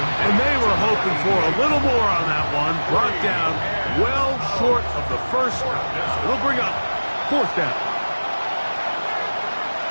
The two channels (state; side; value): inverted; both; correlation -1.00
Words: And they were hoping for a little more on that one. Brought down well short of the first. It'll bring up 4th down.